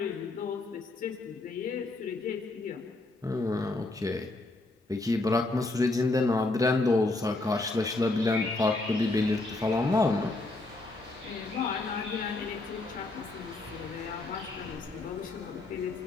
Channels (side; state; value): right; quieter; 3.0 dB